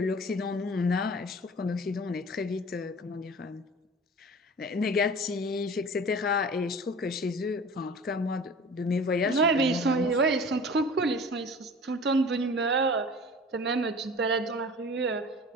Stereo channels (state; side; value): normal; both; correlation 0.41